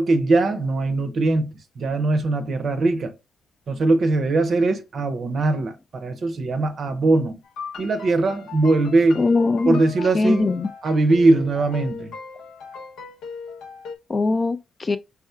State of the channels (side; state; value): both; normal; correlation 0.89